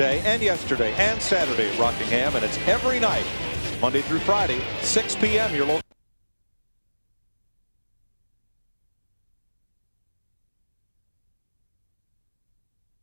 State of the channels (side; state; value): both; inverted; correlation -1.00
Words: and yesterday and Saturday at Rockingham, and it's every night, Monday through Friday, 6 p.m. Your local.